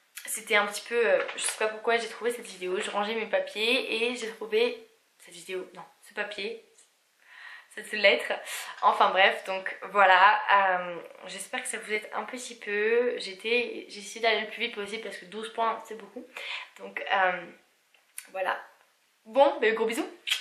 c'était un petit peu, je sais pas pourquoi j'ai trouvé cette vidéo, je rangeais mes papiers et j'ai trouvé cette vidéo, non, ce papier, cette lettre, enfin bref, donc voilà, j'espère que ça vous aide un petit peu. J'ai essayé d'aller le plus vite possible parce que 12 points c'est beaucoup, donc voilà, bon, ben, gros bisous,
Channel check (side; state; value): both; identical; correlation 1.00